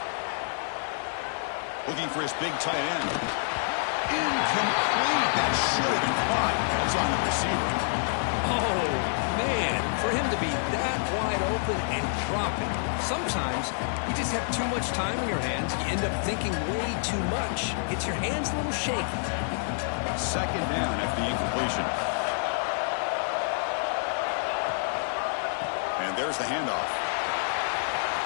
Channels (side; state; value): right; silent; digital silence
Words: Looking for his big tight end. Incomplete. That should have been caught. That's on the receiver. Oh, man. For him to be that wide open and drop it. Sometimes you just have too much time in your hands. You end up thinking way too much. Gets your hands a little shaky. Second down after the incompletion. And there's the handoff.